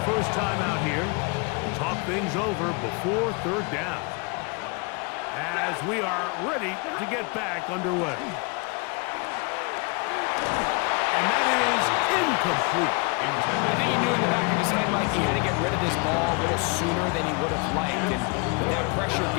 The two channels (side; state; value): right; quieter; 30.8 dB